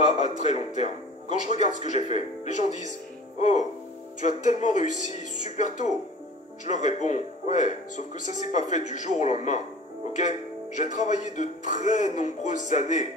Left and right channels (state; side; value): normal; both; correlation 0.43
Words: à très long terme. Quand je regarde ce que j'ai fait, les gens disent « Oh, tu as tellement réussi super tôt !» Je leur réponds « Ouais, sauf que ça s'est pas fait du jour au lendemain, ok? J'ai travaillé de très nombreuses années